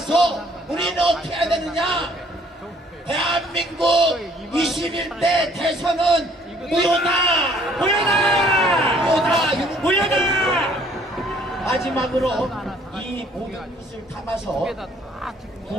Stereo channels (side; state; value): both; normal; correlation 0.60